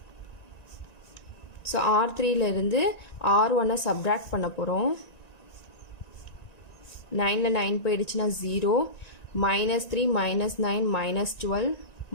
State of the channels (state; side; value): late; right; 1.9 ms